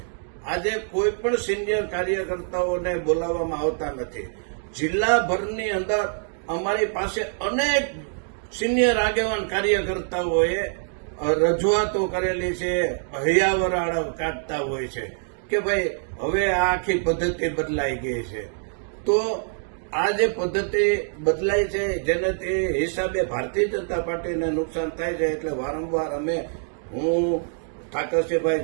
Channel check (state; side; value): silent; left; digital silence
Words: આજે કોઈ પણ સિનિયર કાર્યકર્તાઓને બોલાવવામાં આવતા નથી. જિલ્લાભરની અંદર અમારી પાસે અનેક સિનિયર આગેવાન કાર્યકર્તાઓએ રજૂઆતો કરેલી છે, હૈયાવરાળ કાઢતા હોય છે કે ભાઈ હવે આ આખી પદ્ધતિ બદલાઈ ગઈ છે. તો આ જે પદ્ધતિ બદલાઈ છે જેનાથી હિસાબે ભારતીય જનતા પાર્ટીને નુકસાન થાય છે એટલે વારંવાર હું